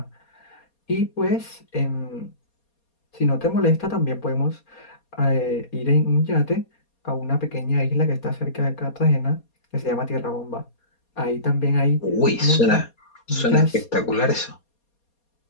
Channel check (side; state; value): right; late; 4.2 ms